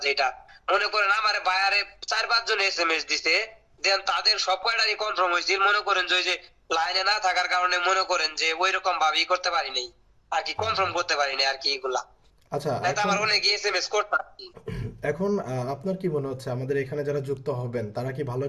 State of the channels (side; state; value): both; identical; correlation 1.00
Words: যেটা মনে করেন আমার বায়ারে 4-5 জন এসএমএস দিছে, দেন তাদের সব কয়টারই কনফার্ম হয়েছে। মনে করেন যে ওই যে লাইনে না থাকার কারণে মনে করেন যে ওই রকম ভাবেই করতে পারি নাই আর কি, কনফার্ম করতে পারি নাই আর কি এগুলা। আচ্ছা, নাই তো এখন আমার অনেক এসএমএস করতাম আর কি। এখন আপনার কি মনে হচ্ছে আমাদের এখানে যারা যুক্ত হবেন তারা কি ভালো